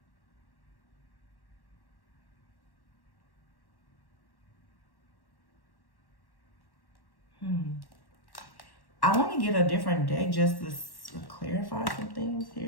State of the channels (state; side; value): late; right; 1.1 ms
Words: I want to get a different deck just to clarify some things